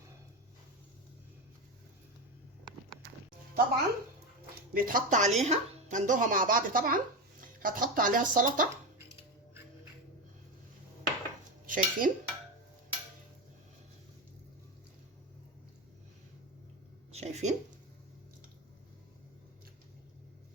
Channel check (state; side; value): normal; both; correlation 0.16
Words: طبعا بيتحط عليها، هندوها مع بعض. طبعا هتحط عليها السلطه. شايفين، شايفين